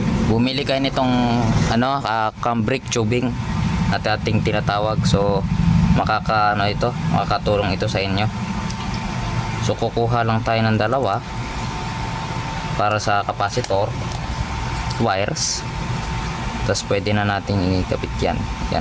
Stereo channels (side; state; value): both; identical; correlation 1.00